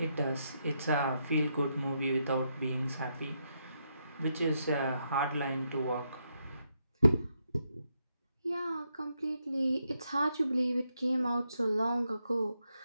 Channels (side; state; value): both; inverted; correlation -0.80